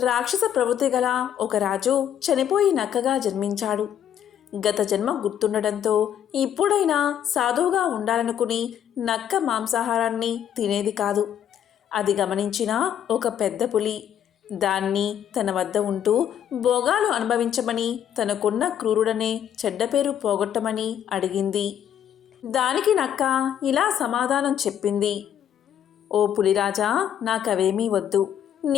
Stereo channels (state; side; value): quieter; right; 9.8 dB